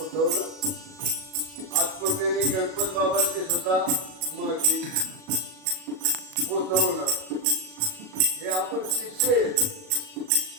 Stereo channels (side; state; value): left; late; 38 ms